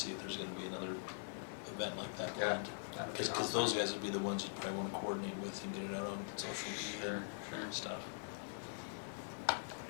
if there's gonna be another event like that Yeah, planned. that'd be Cause awesome. those guys would be the ones you'd probably wanna coordinate with and get it out on social media Sure. and stuff.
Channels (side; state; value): right; silent; digital silence